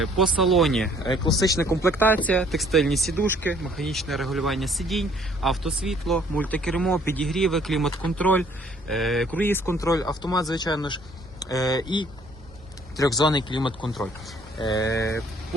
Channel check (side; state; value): both; normal; correlation 0.60